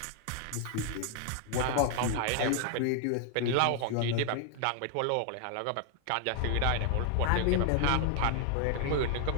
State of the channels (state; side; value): different; both; correlation 0.00